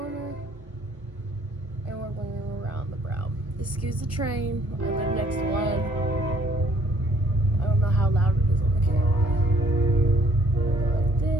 and we're going around the brow. Excuse the train. I live next to one. I don't know how loud it is on the camera. I go like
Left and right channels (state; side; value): normal; both; correlation 0.61